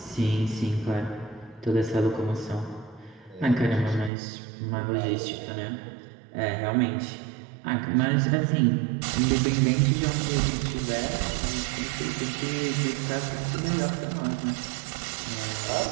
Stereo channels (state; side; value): drops out; left; at 4.1 s